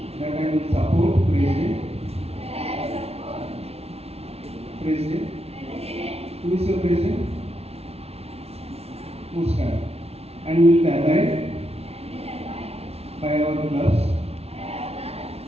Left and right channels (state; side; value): late; left; 0.30 ms